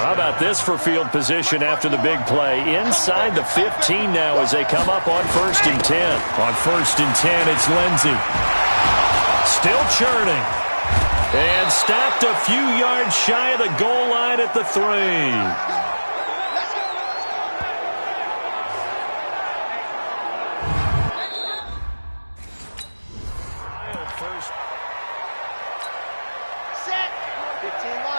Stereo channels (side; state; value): both; inverted; correlation -1.00